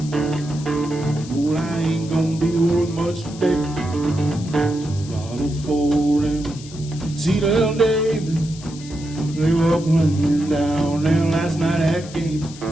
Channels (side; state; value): left; noise; hiss, 17 dB below the sound